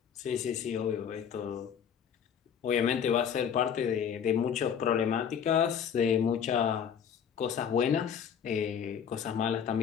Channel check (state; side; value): quieter; right; 7.9 dB